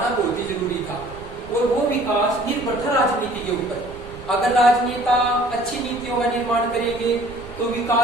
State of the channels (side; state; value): right; noise; rumble, 17 dB below the sound